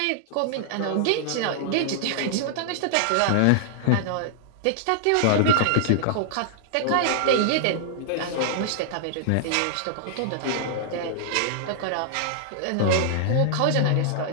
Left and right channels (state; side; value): different; both; correlation -0.01